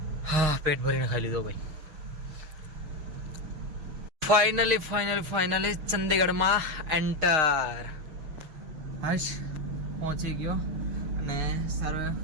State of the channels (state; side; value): late; left; 6.4 ms